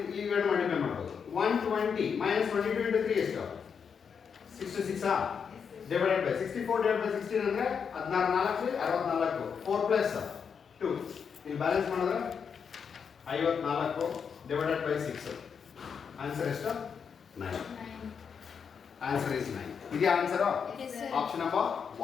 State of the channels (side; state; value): right; quieter; 6.6 dB